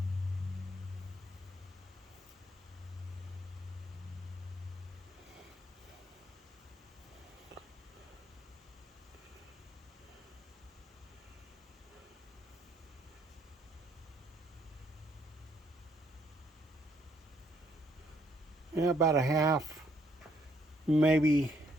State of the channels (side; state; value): both; normal; correlation 0.69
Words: Yeah, about a half, maybe